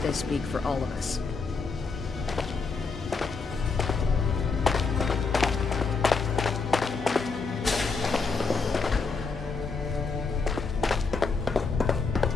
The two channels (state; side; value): quieter; right; 4.6 dB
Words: they speak for all of us.